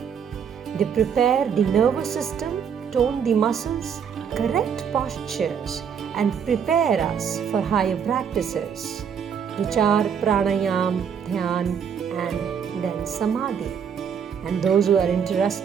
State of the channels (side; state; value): left; quieter; 7.4 dB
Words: They prepare the nervous system, tone the muscles, correct postures, and prepare us for higher practices, which are Pranayama, Dhyana, and then Samadhi. And those who are